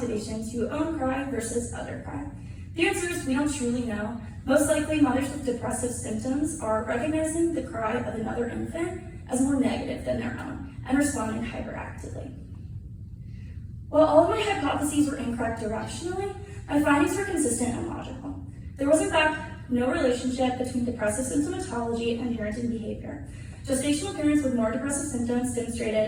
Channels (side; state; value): both; identical; correlation 1.00